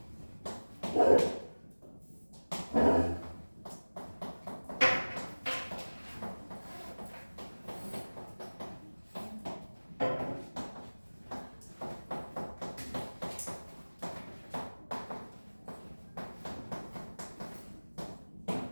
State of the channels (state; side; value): inverted; both; correlation -1.00